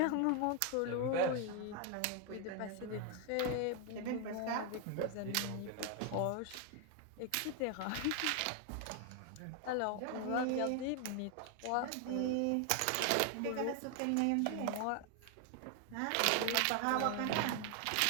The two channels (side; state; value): both; different; correlation 0.00